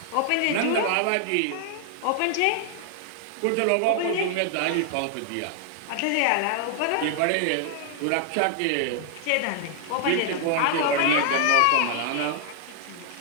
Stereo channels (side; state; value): both; different; correlation 0.00